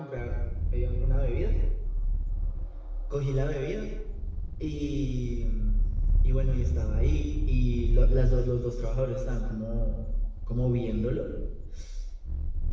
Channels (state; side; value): identical; both; correlation 1.00